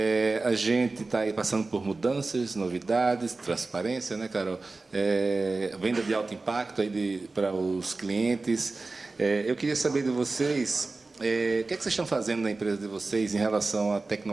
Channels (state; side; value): quieter; left; 3.5 dB